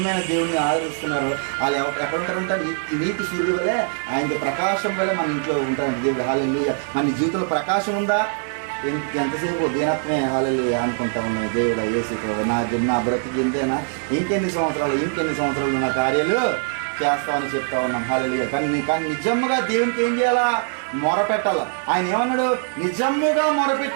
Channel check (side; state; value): left; silent; 64 dB below the other